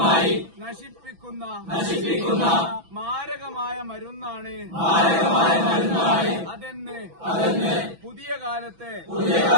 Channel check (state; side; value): late; left; 6.0 ms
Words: നശിപ്പിക്കുന്ന മാരകമായ മരുന്നാണ് അതെന്ന് പുതിയ കാലത്തെ